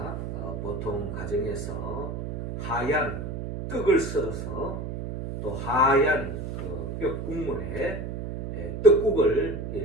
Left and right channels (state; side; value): noise; right; hum, 5 dB below the sound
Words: 보통 가정에서 하얀 떡을 썰어서 또 하얀 그 뼈국물에 떡국을